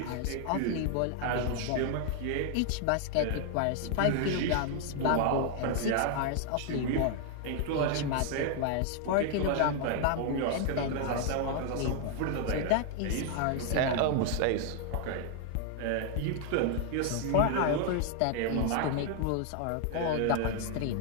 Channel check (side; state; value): both; different; correlation 0.00